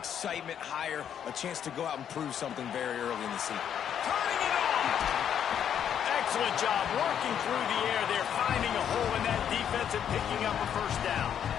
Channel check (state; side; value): quieter; right; 9.0 dB